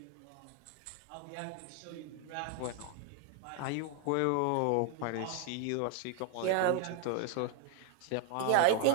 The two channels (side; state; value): both; different; correlation 0.00